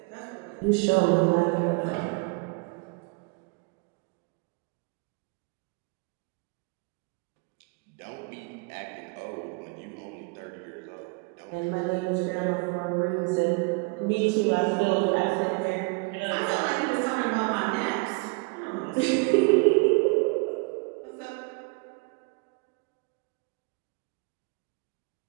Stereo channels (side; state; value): left; quieter; 30.4 dB